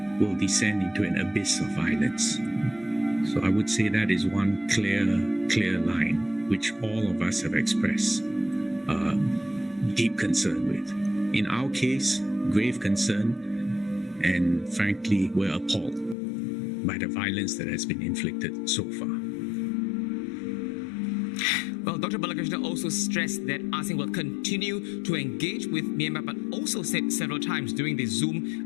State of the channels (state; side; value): drops out; right; at 16.2 s